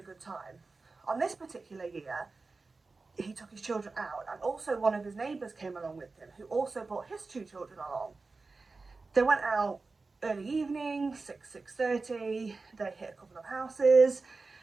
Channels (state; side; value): quieter; left; 3.9 dB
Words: good time. On this particular year he took his children out, and also one of his neighbours came along with him, who also brought his 2 children along. They went out early evening, 6:30, they hit a couple of houses,